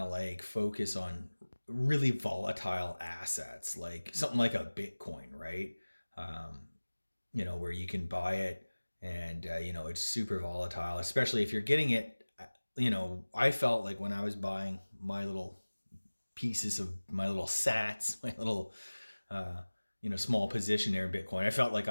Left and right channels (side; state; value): both; inverted; correlation -1.00